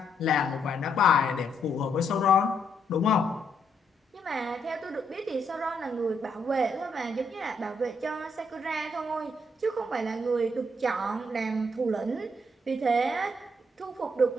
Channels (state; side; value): normal; both; correlation 0.75